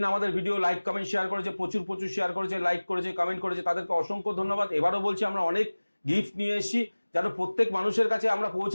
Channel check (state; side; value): inverted; both; correlation -1.00